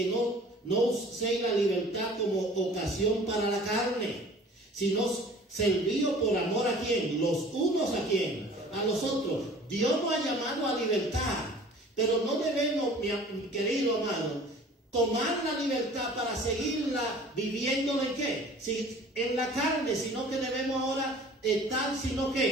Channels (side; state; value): both; normal; correlation 0.47